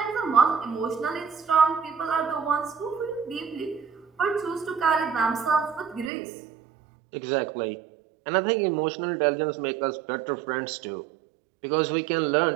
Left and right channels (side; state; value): left; drops out; at 6.1 s